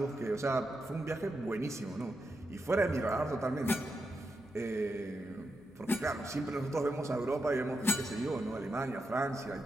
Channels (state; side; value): normal; both; correlation 0.86